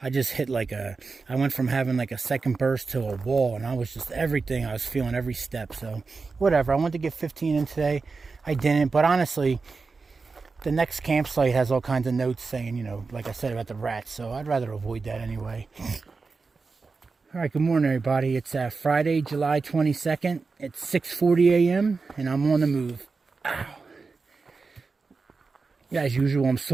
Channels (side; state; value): left; quieter; 4.4 dB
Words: I just hit I went from having like a second burst to a wall. And I was just everything. I was feeling every step. So, whatever. I wanted to get 15 in today. I didn't. But honestly, the next campsite has all kinds of notes saying, you know, like I said about the rats, so I'd rather avoid that anyway. All right, good morning, everybody. It's Friday, July 22nd. It's 6:40 a.m., and I'm on the move. Ow. As usual, I'm